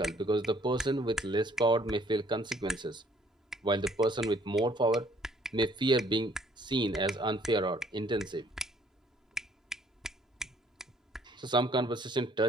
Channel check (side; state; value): both; normal; correlation 0.61